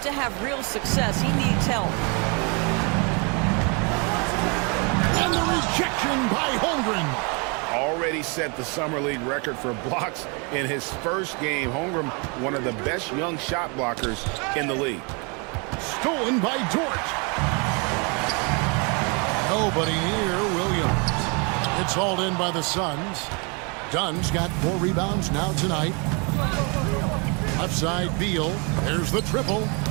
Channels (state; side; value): quieter; left; 32.7 dB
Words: to have real success, he needs help. And the rejection by Holmgren. Already set the Summer League record for blocks in his first game. Holmgren, one of the best young shot blockers in the league. Stolen by Dort. Nobody near Williams. It's hauled in by the Suns. Dunn's got 4 rebounds now tonight. Left side, Beal. There's the triple.